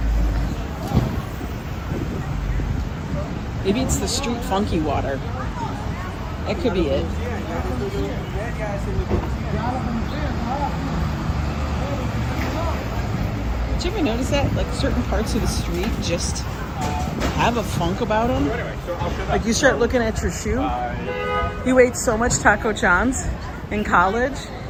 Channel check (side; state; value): both; identical; correlation 1.00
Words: Maybe it's the street funky water. That could be it. Did you ever notice that? Like certain parts of the street just have a funk about them. Like you start looking at your shoe. You ate so much Taco John's in college.